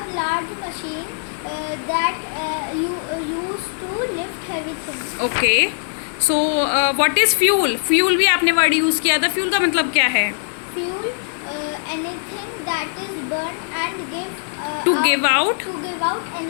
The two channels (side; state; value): right; silent; digital silence